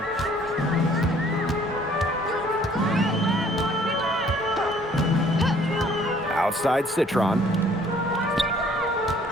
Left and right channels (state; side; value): normal; both; correlation 0.58